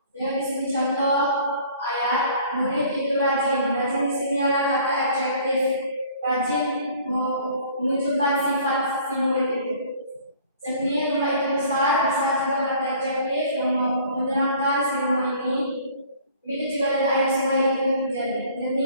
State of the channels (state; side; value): inverted; both; correlation -0.52